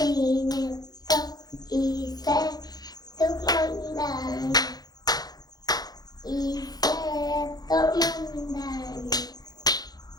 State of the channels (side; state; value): right; late; 0.19 ms